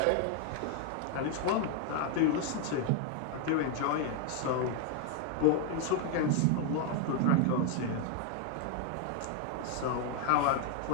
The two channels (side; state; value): both; different; correlation 0.00